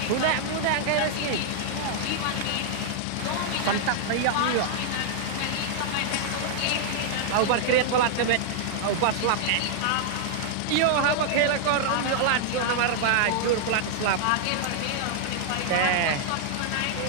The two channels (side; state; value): both; different; correlation -0.01